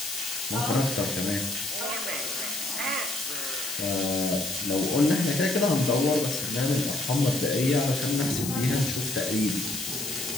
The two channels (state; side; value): noise; left; hiss, 5 dB below the sound